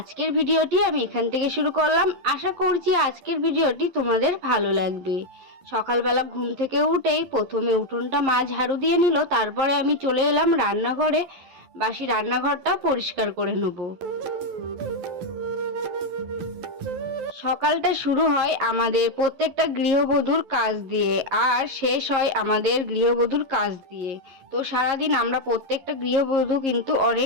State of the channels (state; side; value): late; left; 11 ms